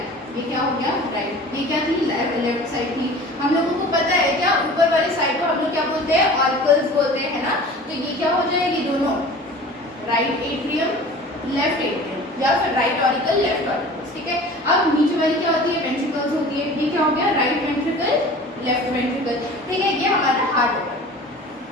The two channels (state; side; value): normal; both; correlation 0.41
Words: ये साइड को हम लोग क्या बोलते हैं, ऑरिकल्स बोलते हैं, है ना। तो ये क्या हो जाएगी, दोनों राइट एट्रियम लेफ्ट एट्रियम, या फिर राइट ऑरिकल लेफ्ट ऑरिकल, ठीक है। अब नीचे वाली क्या होती है, वेंट्रिकल्स होती है। ये क्या हो गया, राइट वेंट्रिकल लेफ्ट वेंट्रिकल, ठीक है। ये हमारा हार्ट होगा।